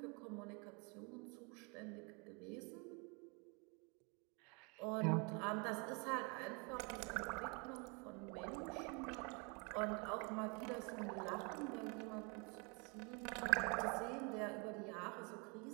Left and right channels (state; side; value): quieter; left; 32.5 dB